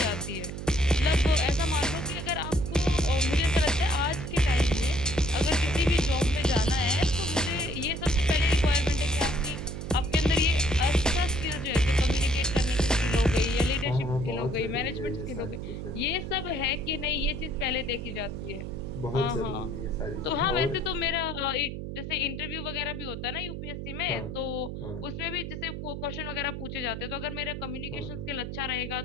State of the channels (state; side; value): noise; right; hum, 7 dB below the sound